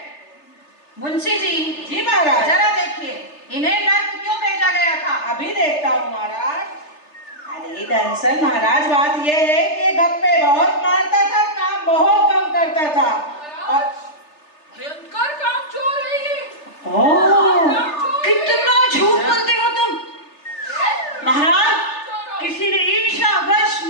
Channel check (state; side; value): late; right; 3.3 ms